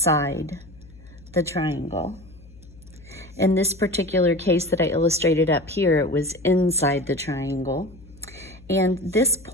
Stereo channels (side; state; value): left; noise; hum, 22 dB below the sound